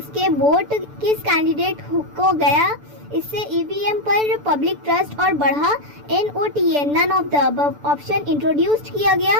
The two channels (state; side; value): late; left; 6.9 ms